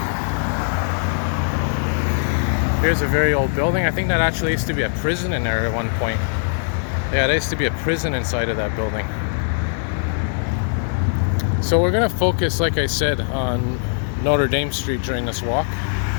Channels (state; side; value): silent; right; digital silence